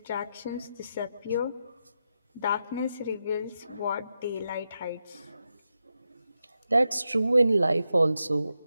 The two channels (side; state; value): both; inverted; correlation -0.87